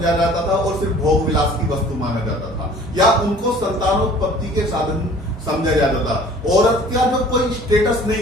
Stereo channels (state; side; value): normal; both; correlation 0.49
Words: जाता था और सिर्फ भोग विलास की वस्तु माना जाता था या उनको संतानोत्पत्ति के साधन समझा जाता था। औरत का जो कोई स्टेटस